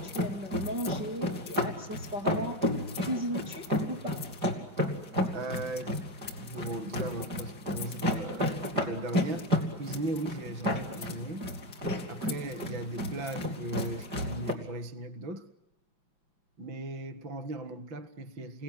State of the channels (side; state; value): left; late; 5.0 ms